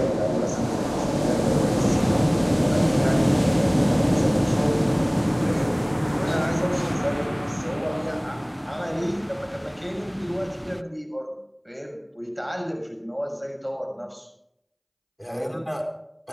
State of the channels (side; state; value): both; identical; correlation 1.00